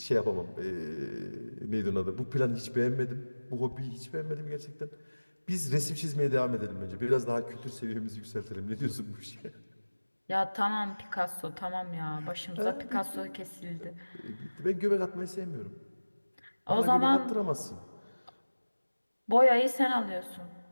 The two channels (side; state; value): both; inverted; correlation -1.00